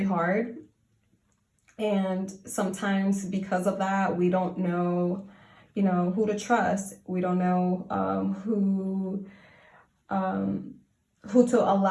hard. And sometimes because of that, we don't know, you know, who to trust. We don't know who to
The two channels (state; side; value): identical; both; correlation 1.00